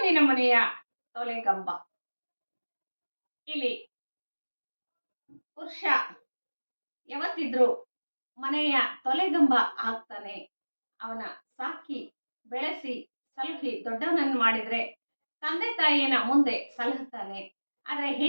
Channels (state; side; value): inverted; both; correlation -1.00